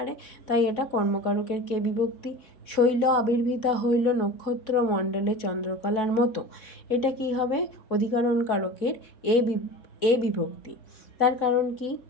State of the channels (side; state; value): right; late; 4.1 ms